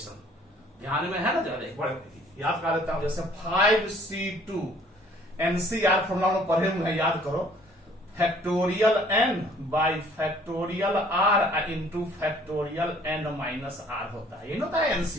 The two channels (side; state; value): both; normal; correlation 0.57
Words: ध्यान में है ना, ज्यादा एक बार याद कर लेता हूं। जैसे 5C2 NCR फॉर्मूला हम पढ़े हुए हैं, याद करो, factorial n by factorial r into factorial n minus r होता है, ये होता है